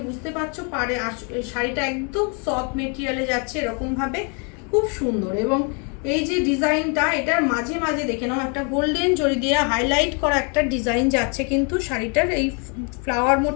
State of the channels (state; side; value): quieter; right; 36.2 dB